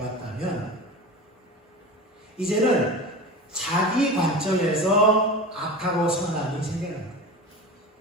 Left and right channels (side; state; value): both; normal; correlation 0.30